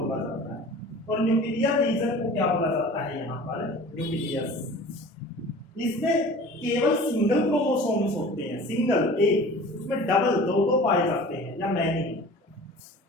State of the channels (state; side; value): normal; both; correlation 0.42